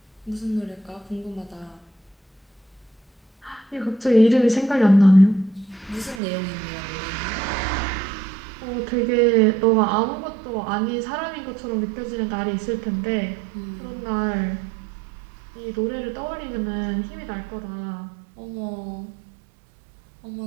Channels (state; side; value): drops out; left; at 6.2 s